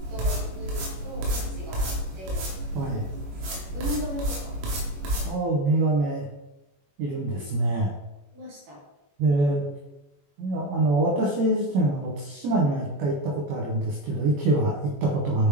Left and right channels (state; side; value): late; left; 21 ms